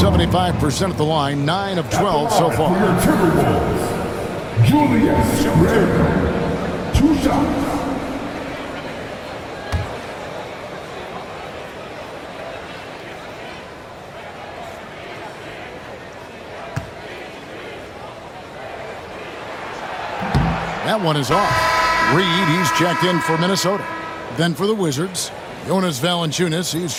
at the line, 9 of 12 so far. Timberwolves, Julius Randle, 2 shots. That one is off. Reed, he's checked in for Minnesota. Then for the Wizards, Jonas Valanciunas, he's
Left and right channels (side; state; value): both; identical; correlation 1.00